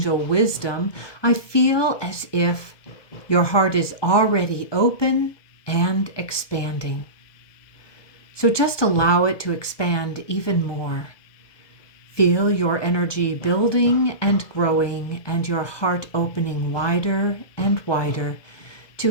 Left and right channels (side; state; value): right; late; 1.2 ms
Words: wisdom, I feel as if your heart is already open and expanding. So just allow it to expand even more. Feel your energy building and growing and your heart opening wider and wider